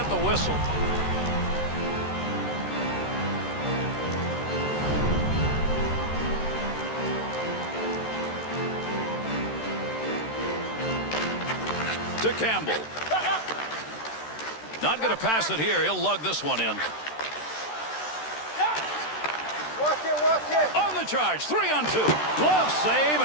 the whistle. To Campbell. Not going to pass it here. He'll lug this one in. On the charge. 3-on-2. Glove save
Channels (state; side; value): late; right; 13 ms